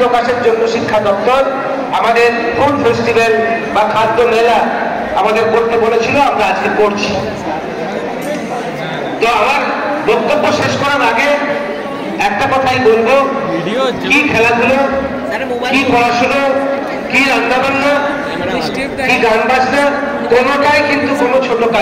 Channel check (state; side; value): identical; both; correlation 1.00